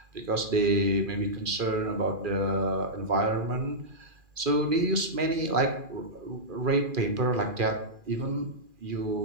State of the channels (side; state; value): left; late; 2.4 ms